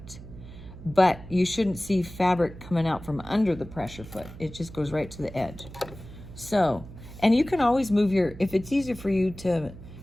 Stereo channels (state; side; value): noise; right; hum, 15 dB below the sound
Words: But you shouldn't see fabric coming out from under the pressure foot. It just goes right to the edge. So, and you can always move if it's easier for you to